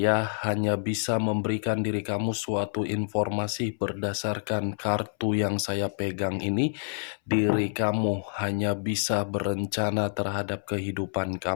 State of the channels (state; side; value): silent; right; 60 dB below the other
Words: hanya bisa memberikan diri kamu suatu informasi berdasarkan kartu yang saya pegang ini. Diri kamu hanya bisa berencana terhadap kehidupan